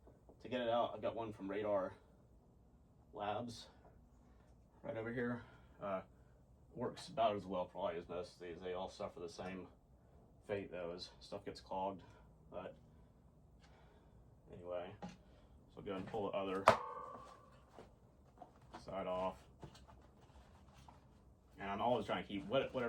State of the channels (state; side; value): identical; both; correlation 1.00